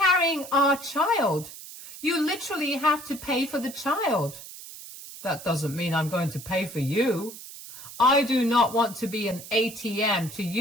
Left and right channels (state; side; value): noise; right; hiss, 14 dB below the sound